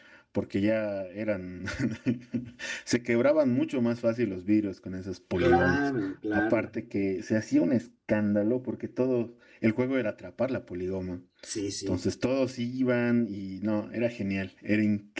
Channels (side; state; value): both; identical; correlation 1.00